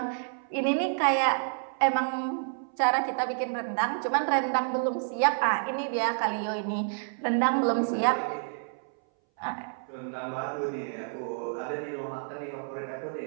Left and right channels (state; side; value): silent; left; 58 dB below the other